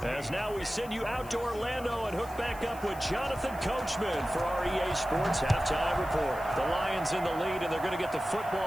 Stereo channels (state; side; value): noise; left; hiss, 20 dB below the sound